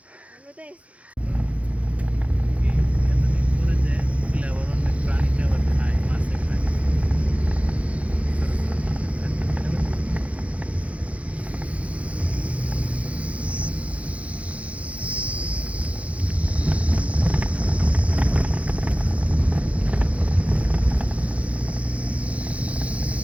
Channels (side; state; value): left; late; 0.065 ms